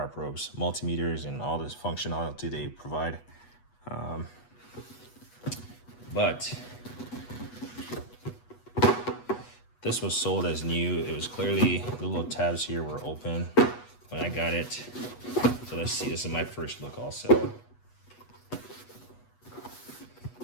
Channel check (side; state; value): right; late; 8.2 ms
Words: probes, multimeters and all this functionality they provide. But this was sold as new. It was clearly, the little tabs here were open when I got it. So let's see, this is my first look also.